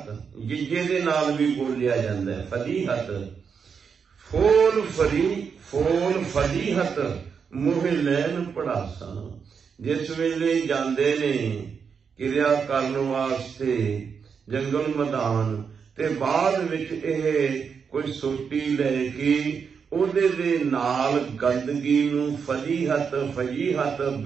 ਜਿੱਜੇ ਦੇ ਨਾਲ ਵੀ ਬੋਲਿਆ ਜਾਂਦਾ ਹੈ, ਫਲੀਹਤ। ਫੋਲ ਫਲੀ, ਫੋਲ ਫਲੀਹਤ ਮੋਹ ਲੈਣ ਪੜਾਸਾਂ। ਜਿਸ ਵੇਲੇ ਜਾਂਦੇ ਨੇ ਕਿਰਿਆ ਕਰਨ ਵਾਸਤੇ ਜੰਗਲ ਮੈਦਾਨ, ਤੇ ਬਾਅਦ ਵਿੱਚ ਇਹ ਕੋਈ ਸੋਟੀ ਲੈ ਕੇ ਉਹਦੇ ਦੇ ਨਾਲ ਗੰਦਗੀ ਨੂੰ, ਫਲੀਹਤ ਫਲੀਹਤ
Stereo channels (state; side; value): quieter; left; 6.3 dB